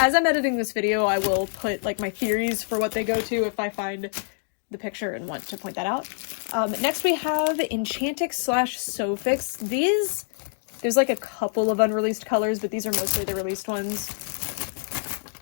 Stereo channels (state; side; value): silent; right; digital silence